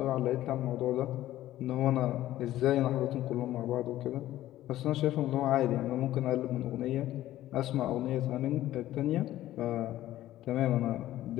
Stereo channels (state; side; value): quieter; right; 14.2 dB